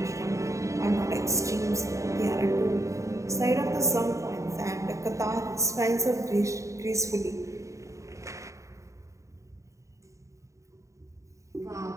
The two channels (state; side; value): late; left; 0.15 ms